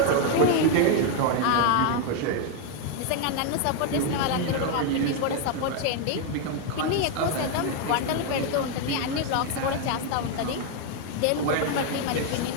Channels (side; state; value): both; different; correlation 0.01